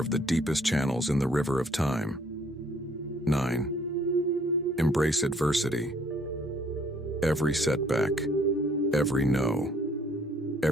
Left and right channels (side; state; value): both; normal; correlation 0.62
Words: the deepest channels in the river of time. 9. Embrace adversity. Every setback, every no,